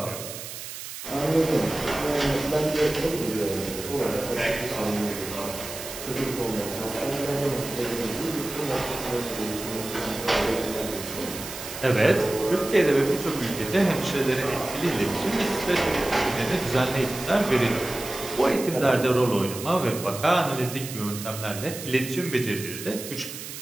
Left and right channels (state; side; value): noise; right; hiss, 10 dB below the sound